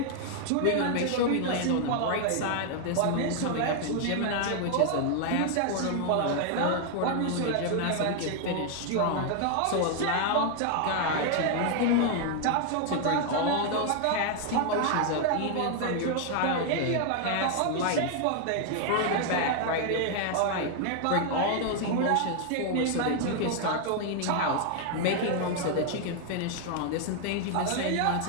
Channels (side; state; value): both; different; correlation 0.00